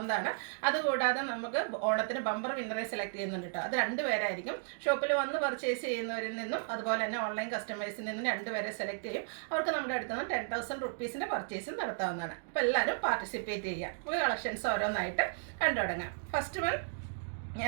അതുകൂടാതെ നമുക്ക് ഓണത്തിന് ബമ്പർ വിന്നറെ സെലക്ട് ചെയ്യുന്നുണ്ട് കേട്ടോ. അത് 2 പേരായിരിക്കും. ഷോപ്പിൽ വന്ന് പർച്ചേസ് ചെയ്യുന്നവരിൽ നിന്നും അതുപോലെ തന്നെ ഓൺലൈൻ കസ്റ്റമേഴ്സിൽ നിന്നും 2 പേരെ സെലക്ട് ചെയ്യും. അവർക്ക് നമ്മുടെ അടുത്ത് നിന്ന് 10,000 റുപ്പീസിൻ്റെ പർച്ചേസ് നടത്താവുന്നതാണ്. അപ്പോൾ എല്ലാവരും പാർട്ടിസിപ്പേറ്റ് ചെയ്യുക. നമുക്ക് കളക്ഷൻസ് ഓരോന്നായിട്ട് കണ്ടു തുടങ്ങാം. ഫസ്റ്റ് വൺ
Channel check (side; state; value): left; silent; digital silence